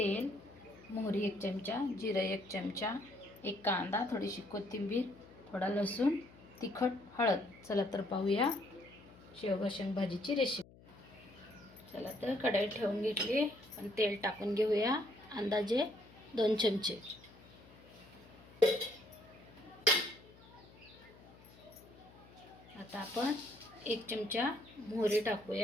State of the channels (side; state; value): left; noise; hum, 22 dB below the sound